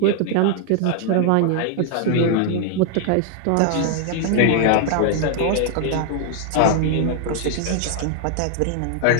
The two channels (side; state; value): both; different; correlation 0.00